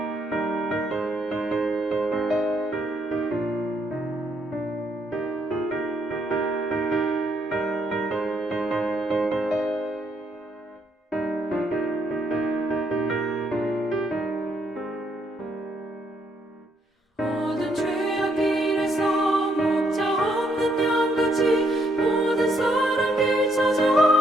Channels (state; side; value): normal; both; correlation 0.73